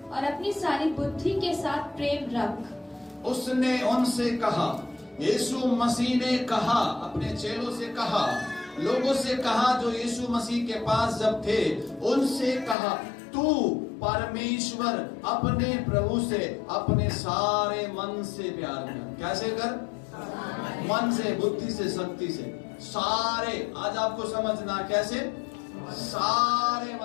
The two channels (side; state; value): right; drops out; at 12.8 s